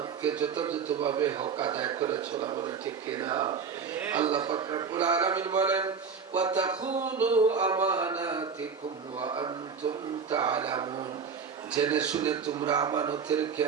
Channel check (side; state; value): left; quieter; 5.9 dB